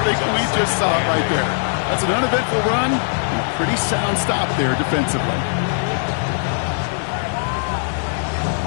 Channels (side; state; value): right; silent; 66 dB below the other